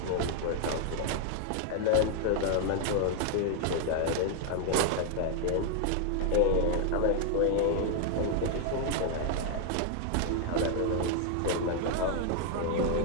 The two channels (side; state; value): both; different; correlation 0.00